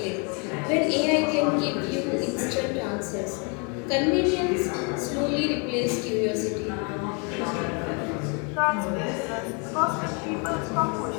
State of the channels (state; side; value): quieter; right; 34.7 dB